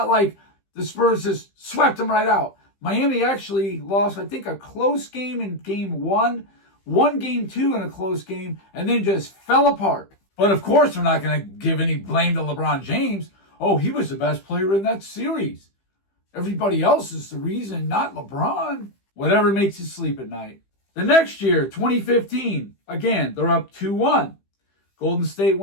like the Spurs just swept them right out. Miami actually lost, I think, a close game in game 1, won game 2 in a close game, and then just fell apart. But of course, we're not going to give any blame to LeBron James. Oh, he was the best player in that series. Everybody else is the reason, not LeBron. Whatever makes you sleep at night. The next year, 2015, again, they're up 2-1. Golden State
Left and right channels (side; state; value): right; late; 15 ms